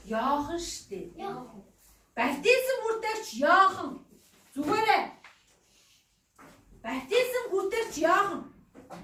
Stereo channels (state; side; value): identical; both; correlation 1.00